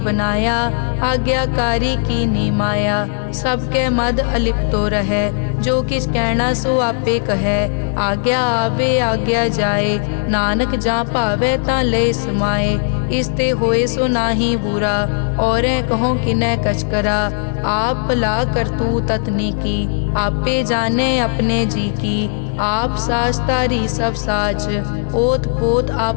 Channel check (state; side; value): silent; right; digital silence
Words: आज्ञाकारी की नी माया। सबके मद अलिप्तो रहे, जो किस कहना सो आपे कहे। आज्ञा आवे आज्ञा जाए, नानक जा भावे ता ले समाए। इसते होए सो नाही बुरा, औरें कहो किनै कछ करा। आप भला करतू ततनी की, आपे जाने अपने जी की। आप साच तारी सब साच, ओत पोत